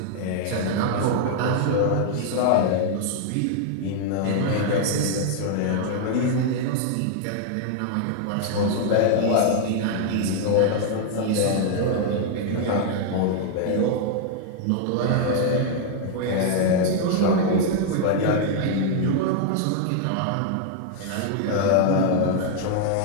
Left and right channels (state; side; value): different; both; correlation 0.00